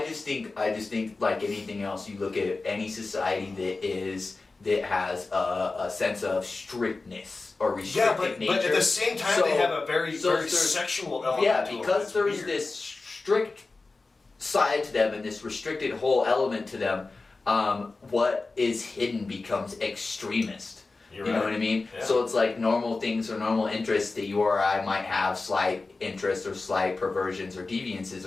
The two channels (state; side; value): quieter; right; 3.7 dB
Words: just think like anything else, you look at any society that has a sense of strictness or restricted nature. But at the same time, they have a very sexual element. Yeah, to because them. there's this strict side to them and this restricted whole element to them. What is hidden becomes extremist. You know what I mean? Yeah. So it's like normal things or normal interests that you or I might have slight interests or slight perversions or deviances